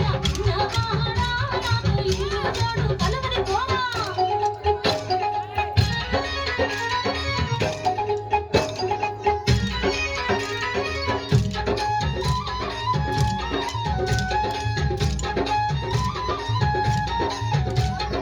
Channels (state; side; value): identical; both; correlation 1.00